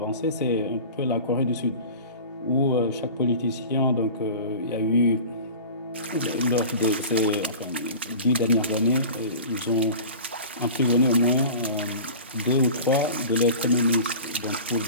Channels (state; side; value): inverted; both; correlation -0.37